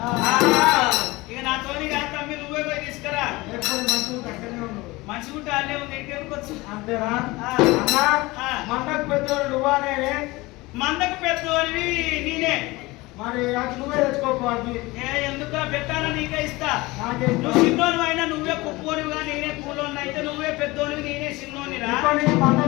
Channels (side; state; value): right; quieter; 21.6 dB